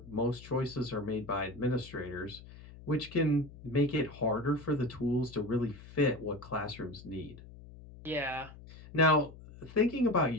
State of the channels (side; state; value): left; noise; hum, 17 dB below the sound